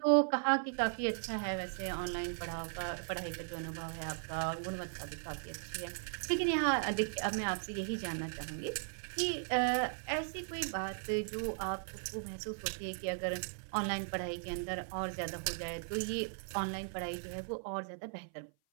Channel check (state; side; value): silent; left; 53 dB below the other